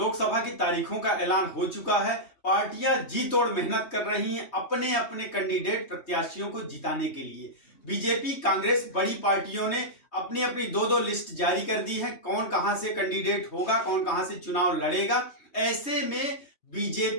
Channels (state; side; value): late; right; 3.2 ms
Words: की तारीखों का ऐलान हो चुका है। पार्टियां जी तोड़ मेहनत कर रही हैं अपने अपने कैंडिडेट प्रत्याशियों को जिताने के लिए। बीजेपी, कांग्रेस, बड़ी पार्टियों ने अपनी अपनी दो लिस्ट जारी कर दी है। कौन कहां से कैंडिडेट होगा, कौन कहां से चुनाव लड़ेगा। ऐसे में